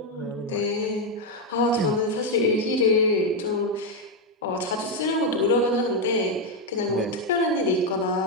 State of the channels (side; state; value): both; normal; correlation 0.04